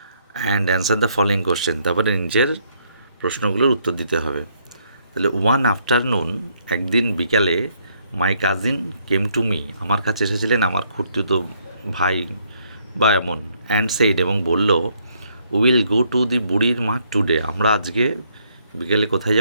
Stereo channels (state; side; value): inverted; both; correlation -0.70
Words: and answer the following question, তারপরে নিজের প্রশ্নগুলোর উত্তর দিতে হবে। তাহলে ওয়ান আফটারনুন, একদিন বিকালে, my cousin came to me, আমার কাছে এসেছিলেন আমার খুড়তুতো ভাই বা এমন, অ্যান্ড সেইড, এবং বলল, উইল গো টু দি বুড়ির মাঠ টুডে, আমরা আজকে বিকেলে কোথায়